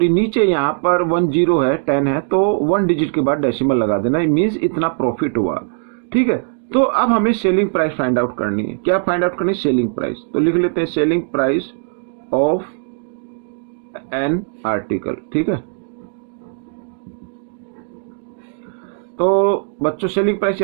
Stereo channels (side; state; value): left; silent; digital silence